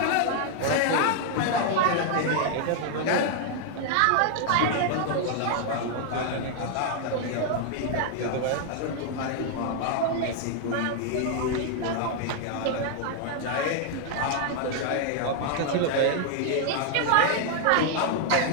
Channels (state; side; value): different; both; correlation 0.00